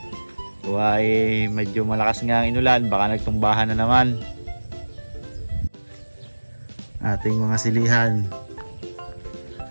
Kuha eh medyo malakas nga ang inulan, baka nagtumbahan na naman. Ating mga silihan.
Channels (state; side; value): inverted; both; correlation -1.00